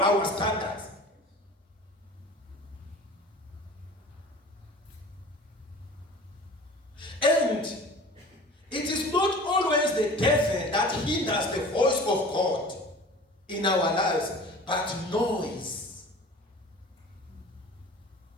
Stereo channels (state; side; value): normal; both; correlation 0.41